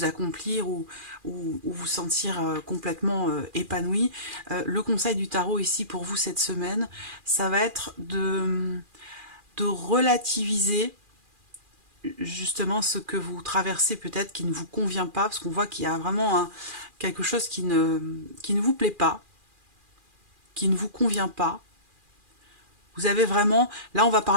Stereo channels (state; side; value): late; left; 2.4 ms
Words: accomplir ou vous sentir complètement épanoui. Le conseil du tarot ici pour vous cette semaine, ça va être de relativiser justement ce que vous traversez peut-être qui ne vous convient pas, parce qu'on voit qu'il y a vraiment quelque chose qui ne vous plaît pas, qui ne vous convient pas. Vous avez vraiment... Là, on va